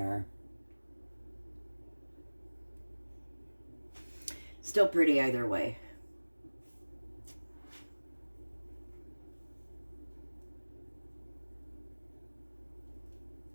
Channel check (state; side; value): inverted; both; correlation -1.00